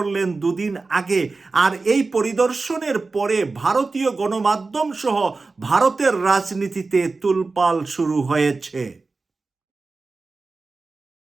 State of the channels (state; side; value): quieter; left; 3.8 dB